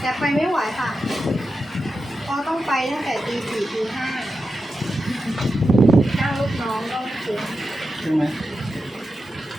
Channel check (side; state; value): both; normal; correlation 0.90